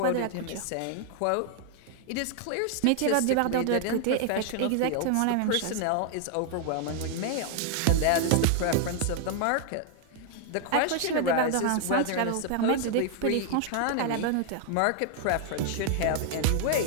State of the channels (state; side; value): different; both; correlation 0.00